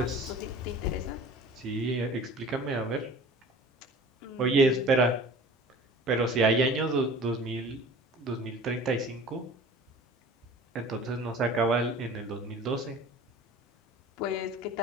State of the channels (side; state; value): both; normal; correlation 0.43